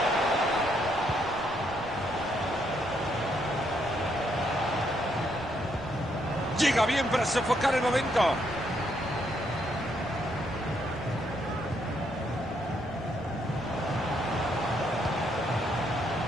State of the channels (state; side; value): noise; left; rumble, 18 dB below the sound